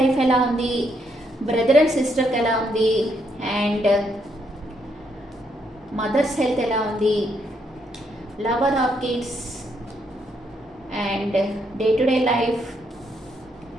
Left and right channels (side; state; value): both; normal; correlation 0.75